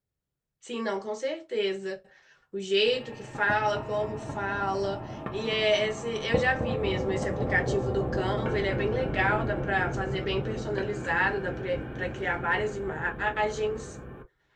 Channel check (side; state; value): both; identical; correlation 1.00